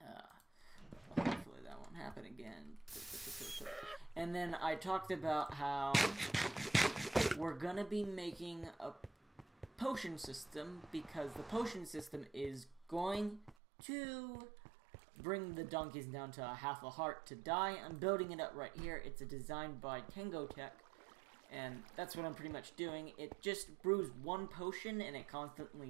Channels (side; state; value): left; drops out; at 13.6 s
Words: Hopefully that won't happen again. And then I talked about how we're gonna be making a potion system because the potion system is going to bring the donkeys down to half a heart to die. I'm building it up right here. It's designed by Tango Tech, and that's what I'm pretty much doing. It just brews one potion, and it